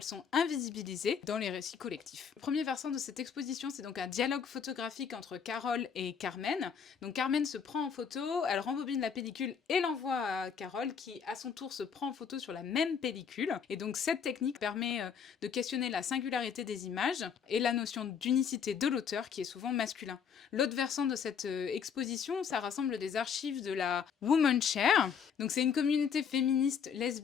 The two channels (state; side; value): quieter; right; 7.0 dB